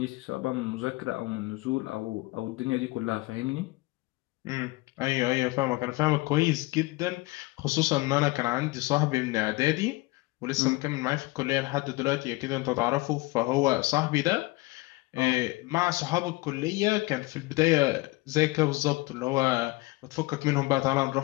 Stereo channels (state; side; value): quieter; right; 22.3 dB